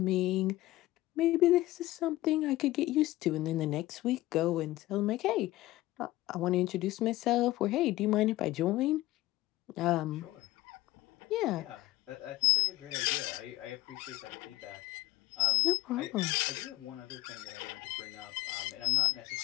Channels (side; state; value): right; quieter; 17.2 dB